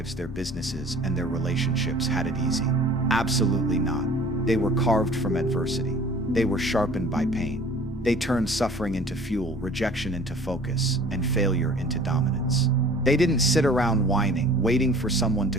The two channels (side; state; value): both; normal; correlation 0.48